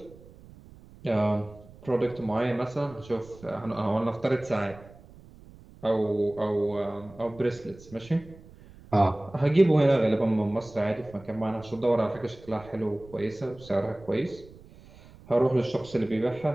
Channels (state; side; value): noise; right; rumble, 21 dB below the sound